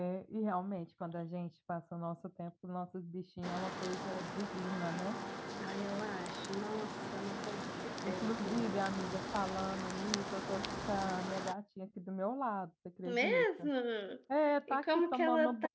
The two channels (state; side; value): identical; both; correlation 1.00